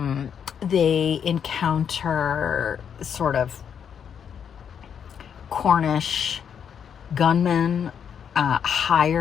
They encounter sort of Cornish gunmen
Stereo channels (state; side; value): quieter; right; 7.8 dB